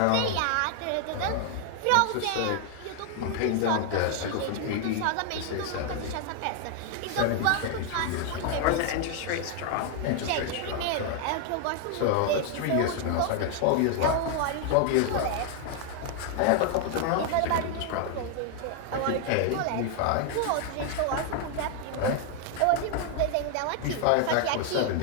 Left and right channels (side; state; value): both; different; correlation 0.00